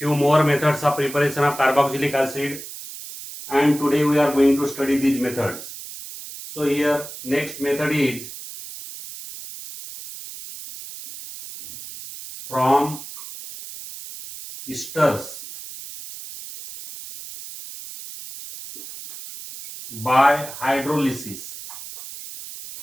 more methods of preparation of carboxylic acid, and today we are going to study these methods. So here, next method is from esters by hydrolysis.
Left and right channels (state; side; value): noise; right; hiss, 12 dB below the sound